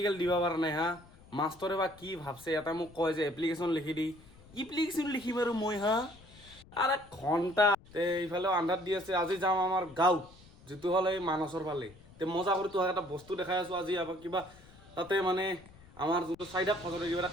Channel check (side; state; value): left; noise; rumble, 23 dB below the sound